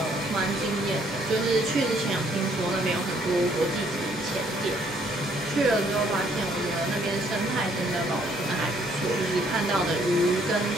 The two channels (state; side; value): normal; both; correlation 0.66